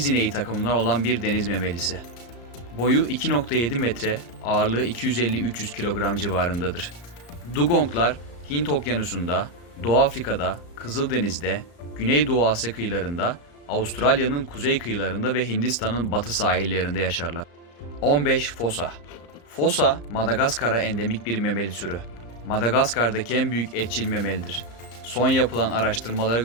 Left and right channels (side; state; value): right; late; 34 ms